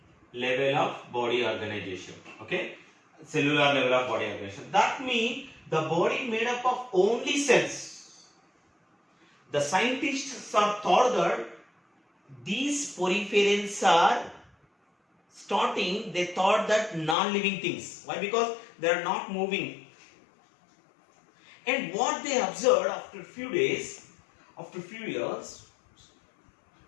level of body organization. Okay? Cellular level of body organization. That means the body made up of only cells. The scientists are thought that these poriferans are starting, they thought that non-living things. Why? Because they are not moving. And what they observed after a few days, after a few years,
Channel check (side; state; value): right; drops out; at 17.2 s